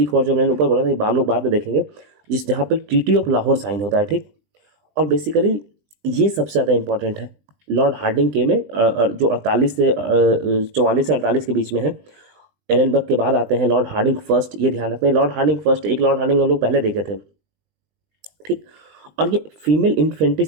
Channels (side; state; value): left; late; 20 ms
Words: वॉर, जो मैंने ऊपर बोला था, हम लोग बाद में देखेंगे, जहाँ पे ट्रीटी ऑफ लाहौर साइन होता है। ठीक, और बेसिकली ये सबसे ज़्यादा इंपॉर्टेंट है लॉर्ड हार्डिंग के में, जो 44 से 48 के बीच में है। एलन बक के बाद आते हैं लॉर्ड हार्डिंग फर्स्ट, ये ध्यान रखना है। लॉर्ड हार्डिंग फर्स्ट, एक लॉर्ड हार्डिंग हम लोग पहले देखे थे। ठीक, और ये फीमेल